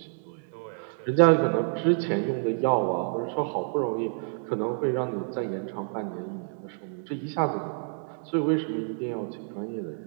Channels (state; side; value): silent; left; 59 dB below the other